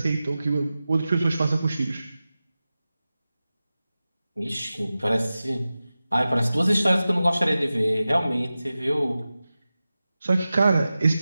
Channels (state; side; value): inverted; both; correlation -0.95